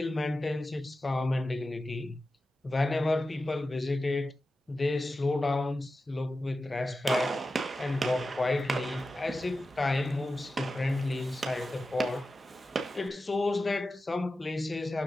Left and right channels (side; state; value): both; normal; correlation 0.93